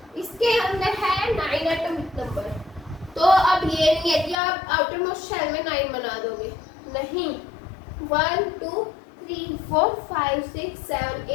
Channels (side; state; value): right; drops out; at 4.4 s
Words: इसके अंदर है 9 एटॉमिक नंबर। तो अब ये नहीं है कि आप आउटर मोस्ट शेल में 9 बना दोगे, नहीं। 1 2 3 4 5 6 7